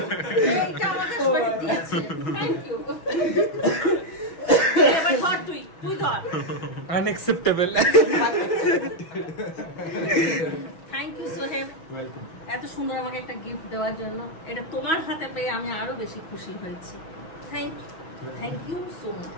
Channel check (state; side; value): late; right; 6.2 ms